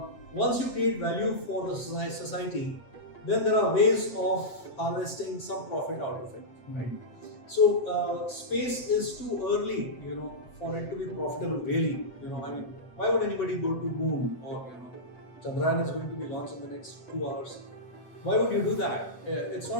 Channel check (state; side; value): late; right; 8.1 ms